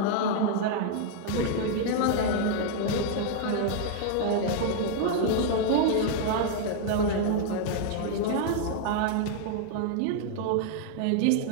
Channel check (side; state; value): both; different; correlation 0.00